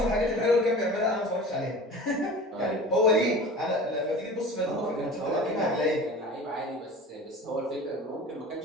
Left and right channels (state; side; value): normal; both; correlation 0.38